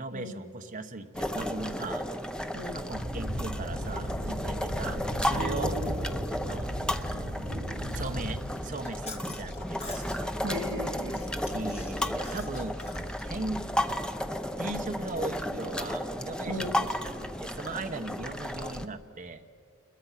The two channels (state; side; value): normal; both; correlation 0.71